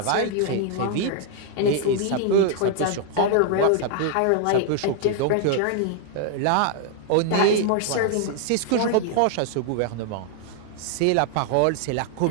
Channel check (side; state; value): both; different; correlation 0.00